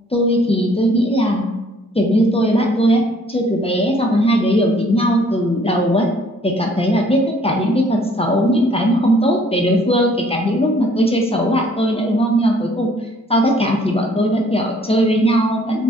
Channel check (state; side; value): normal; both; correlation 0.60